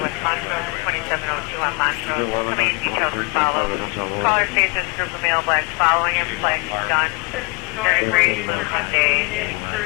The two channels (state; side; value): quieter; right; 30.6 dB